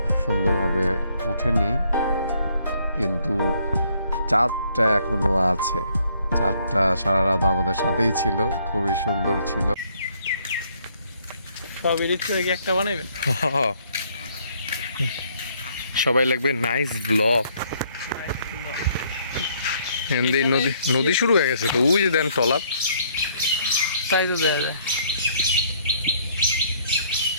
সুন্দরভাবে ওঠেনি, কিন্তু চাঁদটা এখনো আছে। চাঁদটা সারা রাত আমাদের সাথেই ছিল, খুবই সুন্দর ছিল। সব এডিট করে কি একটা বানাইবেন? সবাই লাগবে নাইস ব্লগ। নদী নদী শুরু হয়ে গেছে তো, ওই যে দেন টলার, তাই তো দেওয়া যায়।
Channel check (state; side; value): inverted; both; correlation -0.66